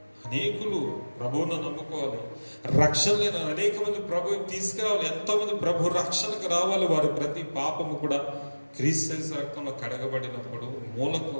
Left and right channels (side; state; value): both; inverted; correlation -1.00